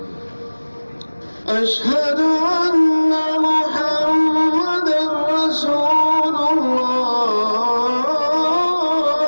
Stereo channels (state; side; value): inverted; both; correlation -1.00